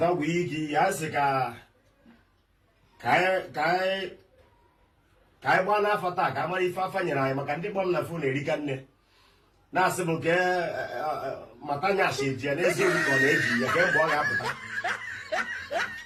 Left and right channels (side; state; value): both; identical; correlation 1.00